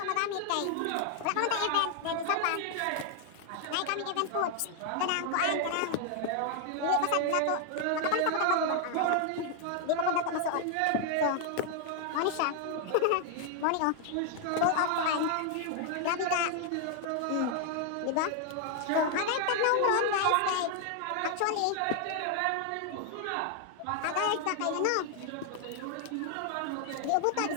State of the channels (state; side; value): different; both; correlation 0.00